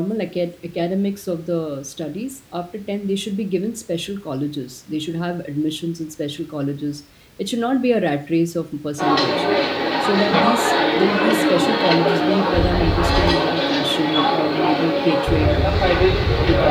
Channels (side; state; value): both; identical; correlation 1.00